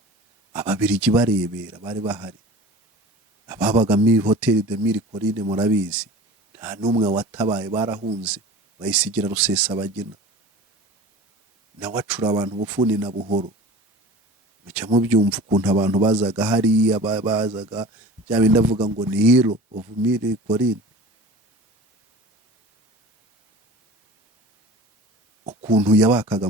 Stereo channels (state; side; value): normal; both; correlation 0.39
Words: Ababiligi barebera bari bahari, ababaga muri hoteli de Mille Collines murabizi, nta n'umwe watabaye, barahunze bayisigira Rusesabagina. Nawe acura abantu bufuni na buhoro. Mucya mubyumva ukuntu abantu bazaga hariya bazaga bya bindi avuga ngo ni hero of Mille Collines, ukuntu yabakaga